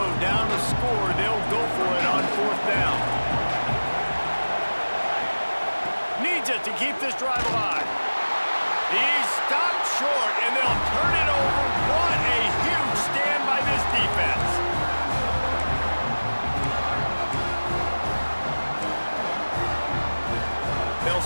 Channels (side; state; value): both; inverted; correlation -1.00